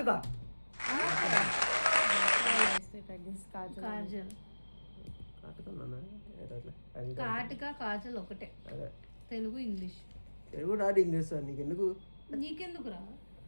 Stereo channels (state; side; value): inverted; both; correlation -1.00